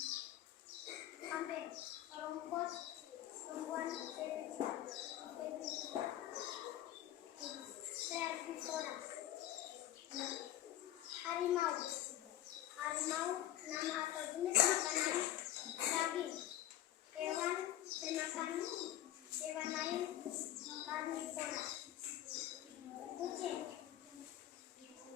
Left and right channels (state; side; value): quieter; right; 13.0 dB